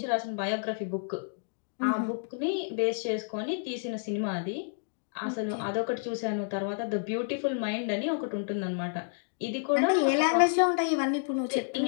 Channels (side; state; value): right; silent; digital silence